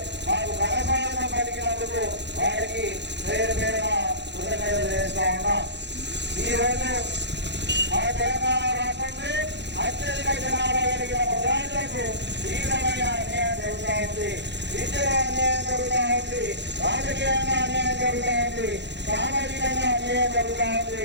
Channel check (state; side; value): late; left; 0.51 ms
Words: మాకు ఘనస్వాగతం పలికినందుకు వారికి పేరు పేరున కృతజ్ఞతలు చేస్తా ఉన్నా. ఈ రోజు మన తెలంగాణ రాష్ట్రంలో అత్యధిక జనాభా కలిగిన ముద్రాజులకు తీవ్రమైన అన్యాయం జరుగుతూ ఉంది. విద్యలో అన్యాయం జరుగుతూ ఉంది, రాజకీయంగా అన్యాయం జరుగుతూ ఉంది, సామాజికంగా అన్యాయం జరుగుతూ